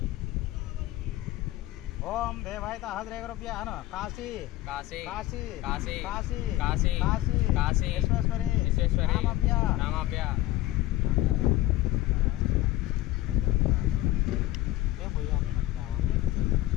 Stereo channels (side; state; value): right; quieter; 16.5 dB